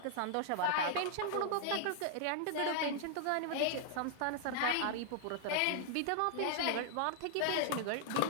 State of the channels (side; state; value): both; different; correlation -0.01